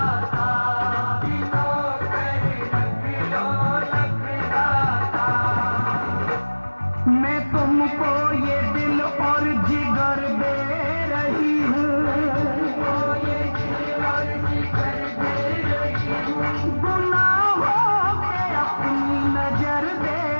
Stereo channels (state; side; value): inverted; both; correlation -1.00